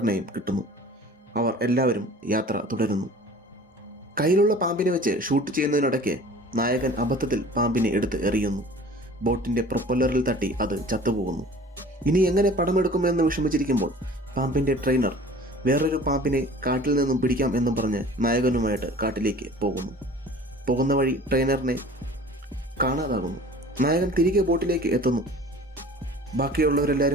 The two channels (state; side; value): normal; both; correlation 0.45